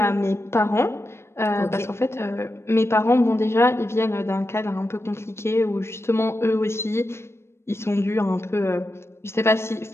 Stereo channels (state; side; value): late; right; 0.12 ms